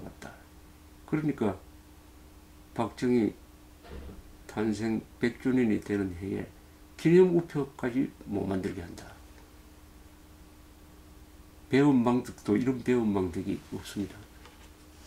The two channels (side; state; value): both; identical; correlation 1.00